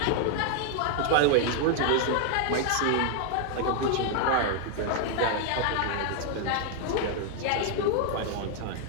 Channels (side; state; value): both; different; correlation 0.00